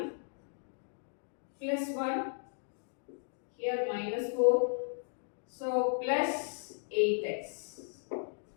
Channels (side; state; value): right; silent; digital silence